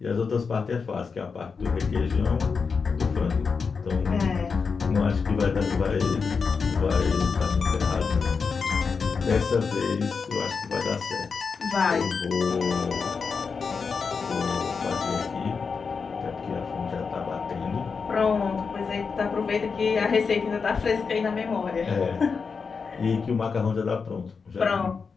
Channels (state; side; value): quieter; right; 5.3 dB